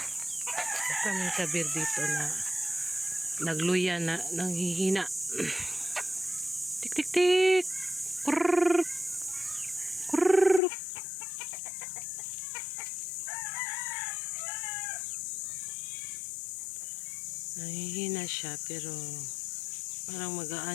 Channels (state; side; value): drops out; right; at 10.6 s